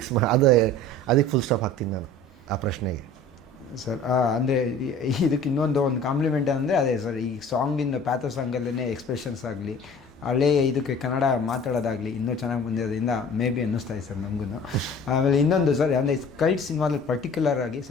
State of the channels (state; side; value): normal; both; correlation 0.45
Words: ಅದಕ್ಕೆ ಫುಲ್ ಸ್ಟಾಪ್ ಹಾಕ್ತೀನಿ ನಾನು ಆ ಪ್ರಶ್ನೆಗೆ. ಸರ್, ಅಂದರೆ ಇದಕ್ಕೆ ಇನ್ನೊಂದು ಕಾಂಪ್ಲಿಮೆಂಟ್ ಅಂದರೆ ಅದೇ ಸರ್, ಈ ಸಾಂಗಿಂದ ಪ್ಯಾಥೋ ಸಾಂಗಲ್ಲೇ ಎಕ್ಸ್ಪ್ರೆಷನ್ಸ್ ಆಗಲಿ, ಹಳೇ ಇದಕ್ಕೆ ಕನ್ನಡ ಮಾತಾಡೋದಾಗಲಿ ಇನ್ನೂ ಚೆನ್ನಾಗಿ ಬಂದಿರೋದ್ರಿಂದ ಮೇ ಬಿ ಅನ್ನಿಸ್ತಾ ಇದೆ ಸರ್ ನಮಗೂ. ಆಮೇಲೆ ಇನ್ನೊಂದು ಸರ್, ಅಂದರೆ ಕಲ್ಟ್ ಸಿನಿಮಾದಲ್ಲಿ ಪರ್ಟಿಕ್ಯುಲರ್ ಆಗಿ